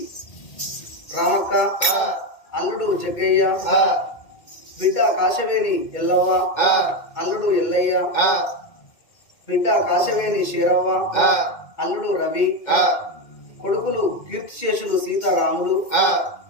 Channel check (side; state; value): right; late; 2.1 ms